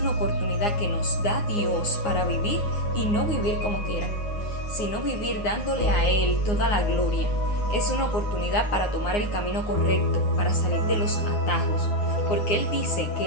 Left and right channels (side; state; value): right; late; 9.6 ms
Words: oportunidad que nos da Dios para vivir y no vivir como quiera, sino vivir dándole a Él toda la gloria. Es una oportunidad para tomar el camino correcto, para salir de los atajos, porque Él dice que